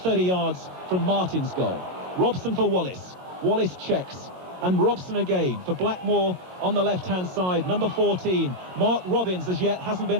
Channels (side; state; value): left; late; 22 ms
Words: 30 yards from Martin's goal. Robson for Wallace. Wallace checks, and Robson again for Blackmore on the left-hand side. Number 14, Mark Robbins, as yet hasn't been